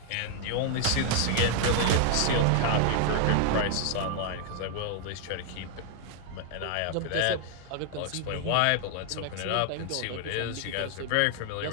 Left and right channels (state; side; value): different; both; correlation 0.00